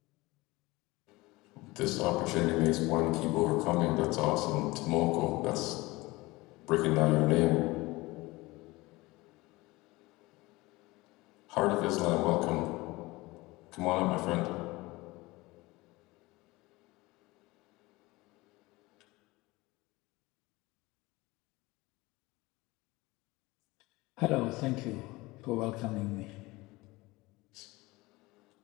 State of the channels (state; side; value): quieter; right; 21.4 dB